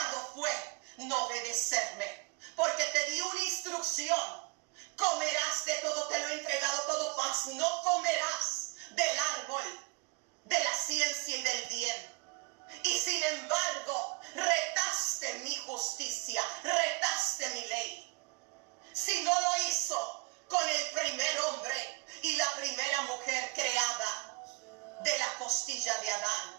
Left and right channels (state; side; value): quieter; left; 27.4 dB